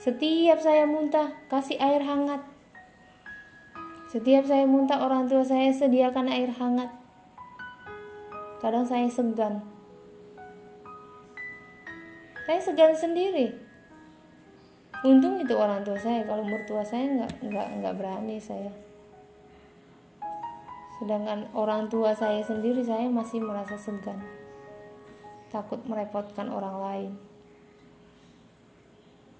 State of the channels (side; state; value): both; identical; correlation 1.00